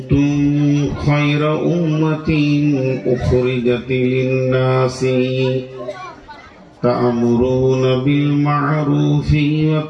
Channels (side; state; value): both; identical; correlation 1.00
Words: خير أمة أخرجت للناس تأمرون بالمعروف